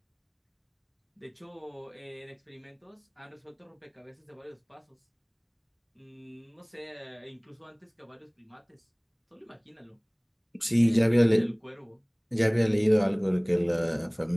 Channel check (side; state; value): both; identical; correlation 1.00